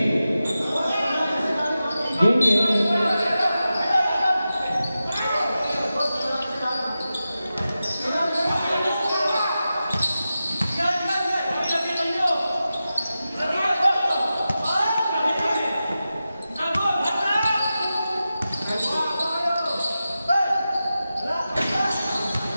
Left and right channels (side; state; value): both; inverted; correlation -0.92